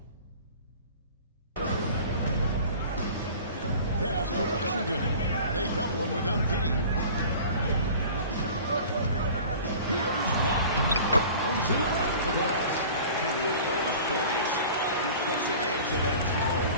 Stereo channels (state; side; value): inverted; both; correlation -0.42